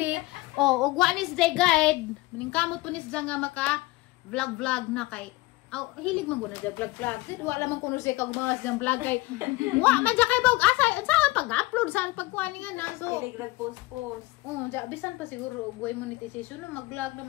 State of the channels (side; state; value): right; quieter; 20.9 dB